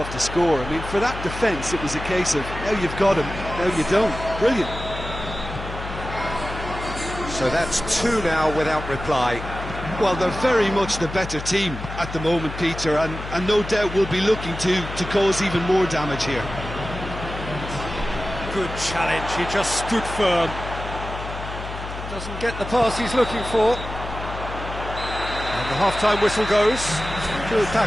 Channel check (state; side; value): noise; left; hum, 9 dB below the sound